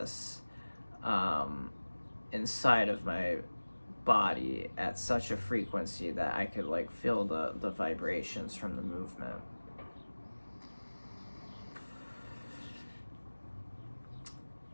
um, inside of my body at such a frequency that I could like feel the vibrations from the movement.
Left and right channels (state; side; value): inverted; both; correlation -1.00